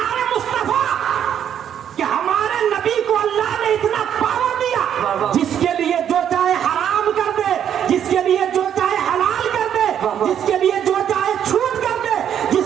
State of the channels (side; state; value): left; quieter; 9.4 dB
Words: مصطفیٰ کہ ہمارے نبی کو اللہ نے اتنا پاور دیا جس کے لیے جو چاہے حرام کر دے, جس کے لیے جو چاہے حلال کر دے, جس کے لیے جو چاہے چھوٹ کر دے,